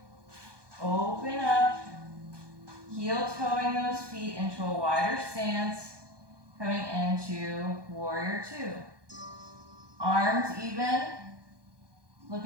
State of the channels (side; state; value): left; late; 1.2 ms